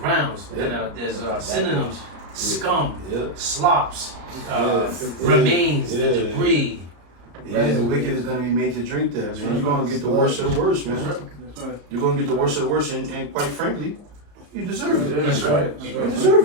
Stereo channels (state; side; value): late; left; 34 ms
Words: And there's synonyms: scum, slops, remains, the debris. The wicked is going to be made to drink that, man. You're going to get the worst of the worst, man. You're going to get the worst of the worst, and quite frankly, you deserve it. That's right. You